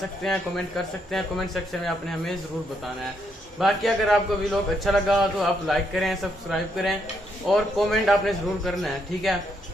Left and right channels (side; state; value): both; normal; correlation 0.76